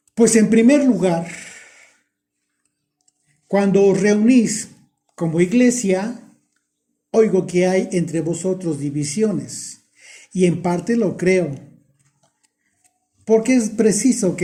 pues en primer lugar, cuando os reunís como iglesia, oigo que hay entre vosotros divisiones, y en parte lo creo, porque es preciso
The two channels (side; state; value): both; identical; correlation 1.00